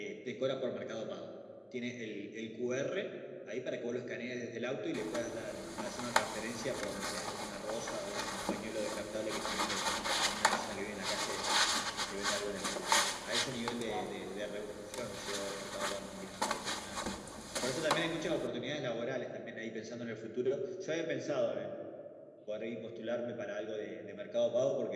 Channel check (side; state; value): both; identical; correlation 1.00